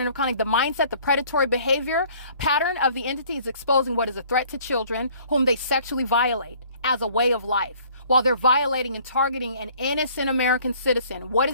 of conduct. The mindset, the predatory behavior pattern of the entity is exposing what is a threat to children whom they sexually violate as a way of life, while they're violating and targeting an innocent American citizen. What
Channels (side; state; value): both; inverted; correlation -0.55